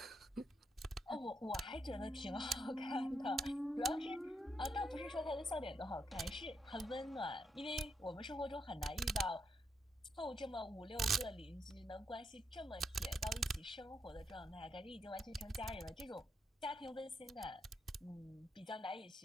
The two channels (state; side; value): normal; both; correlation 0.80